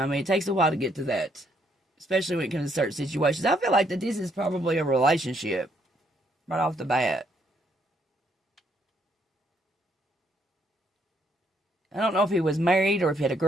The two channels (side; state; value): both; normal; correlation 0.71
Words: mean, it takes a while to get to that, especially when it comes to certain situations. I feel like that this is probably a relationship right off the bat. I don't know if he was married or if he had a